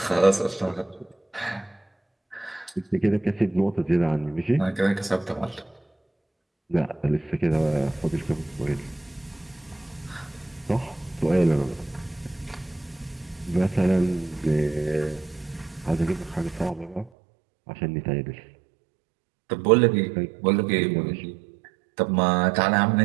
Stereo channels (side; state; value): left; drops out; at 17.1 s